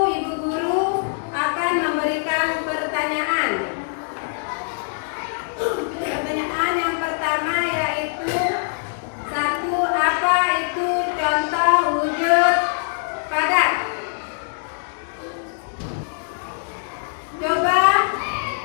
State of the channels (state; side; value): silent; right; digital silence